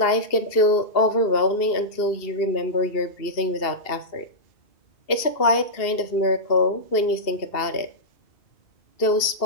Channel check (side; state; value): right; late; 2.7 ms